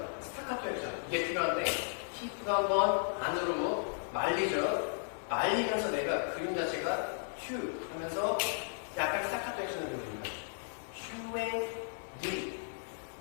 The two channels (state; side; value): silent; right; digital silence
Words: 스타카토 액션 이게 필요한데 히프가 한번 안으로 말리죠. 말리면서 내가 그림 자체가 휴 하면서 약간 스타카토 액션을 보여줍니다. 휴에 느